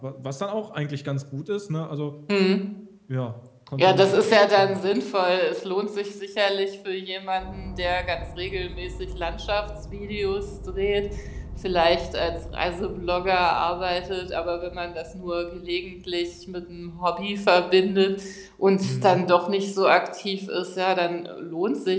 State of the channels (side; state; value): both; identical; correlation 1.00